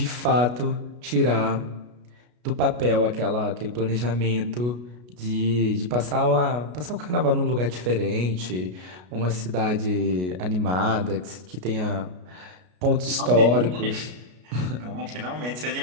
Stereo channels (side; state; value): left; late; 33 ms